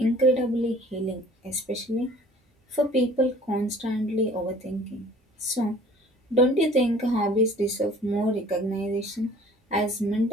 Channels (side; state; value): both; normal; correlation 0.50